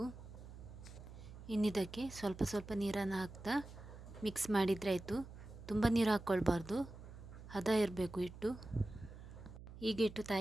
ಇನ್ನಿದಕ್ಕೆ ಸ್ವಲ್ಪ ನೀರನ್ನು ಹಾಕ್ತಾ ಮಿಕ್ಸ್ ಮಾಡಿದರೆ ಆಯಿತು. ತುಂಬ ನೀರು ಹಾಕ್ಕೊಳ್ಬಾರ್ದು, ಹದ ಇರಬೇಕು ಹಿಟ್ಟು. ಈಗ ಹಿಟ್ಟು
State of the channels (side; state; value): right; noise; hum, 14 dB below the sound